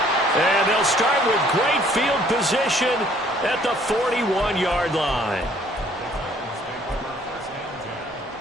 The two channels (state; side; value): normal; both; correlation 0.60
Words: And they'll start with great field position at the 41-yard line.